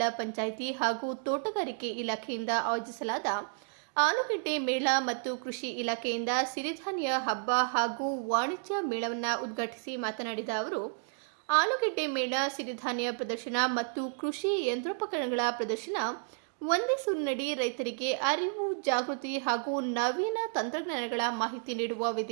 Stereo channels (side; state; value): left; silent; digital silence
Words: ಪಂಚಾಯಿತಿ ಹಾಗೂ ತೋಟಗಾರಿಕೆ ಇಲಾಖೆಯಿಂದ ಆಯೋಜಿಸಲಾದ ಆಲೂಗೆಡ್ಡೆ ಮೇಳ ಮತ್ತು ಕೃಷಿ ಇಲಾಖೆಯಿಂದ ಸಿರಿಧಾನ್ಯ ಹಬ್ಬ ಹಾಗೂ ವಾಣಿಜ್ಯ ಮೇಳವನ್ನು ಉದ್ಘಾಟಿಸಿ ಮಾತನಾಡಿದ ಅವರು, ಆಲೂಗೆಡ್ಡೆ ಮೇಳ, ಸಿರಿಧಾನ್ಯ ಪ್ರದರ್ಶನ ಮತ್ತು ಕೃಷಿ ಯಂತ್ರೋಪಕರಣಗಳ ಪ್ರದರ್ಶನ ಒಂದೇ ಸೂರಿನಡಿ ರೈತರಿಗೆ ಅರಿವು, ಜಾಗೃತಿ ಹಾಗೂ ನವೀನ ತಂತ್ರಜ್ಞಾನಗಳ ಮಾಹಿತಿ ನೀಡುವ